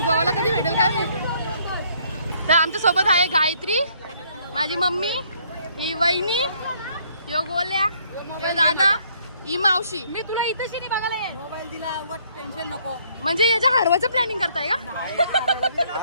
कधी भेटेल काय माहिती. तर आमच्या सोबत आहे गायत्री, माझी मम्मी, ही वहिनी, यो गोल्या, यो दादा, ही मावशी. मी तुला इथं शिनी बघायला येईल. मोबाईल दिला, टेन्शन नको. म्हणजे याच्या हरवाचं प्लॅनिंग करताय का?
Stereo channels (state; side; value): inverted; both; correlation -0.65